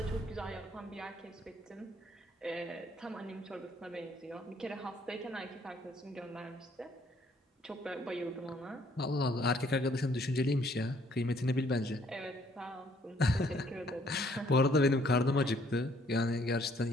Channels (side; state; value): both; normal; correlation 0.64